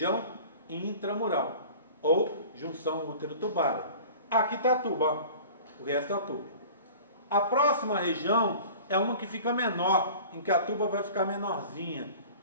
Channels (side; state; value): both; inverted; correlation -0.42